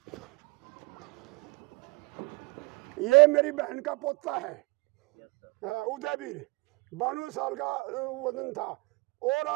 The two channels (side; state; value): left; quieter; 25.6 dB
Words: ये मेरी बहन का पोता है उदयवीर, 92 साल का वजन था, और